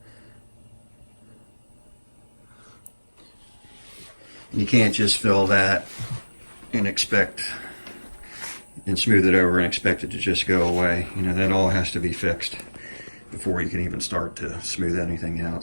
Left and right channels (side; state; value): both; inverted; correlation -1.00